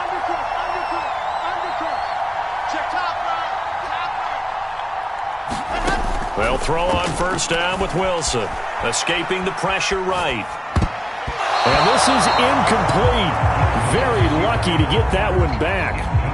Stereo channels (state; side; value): identical; both; correlation 1.00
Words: They'll throw on first down with Wilson, escaping the pressure right. And this is incomplete. Very lucky to get that one back.